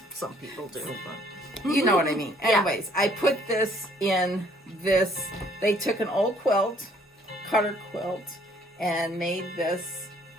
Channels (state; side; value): normal; both; correlation 0.62